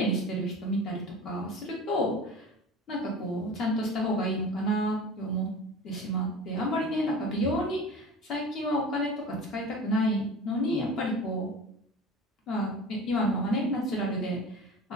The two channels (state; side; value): normal; both; correlation 0.36